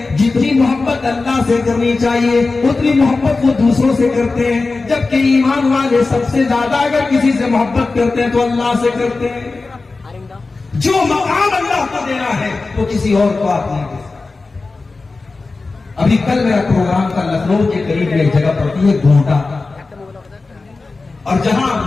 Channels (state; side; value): quieter; right; 3.7 dB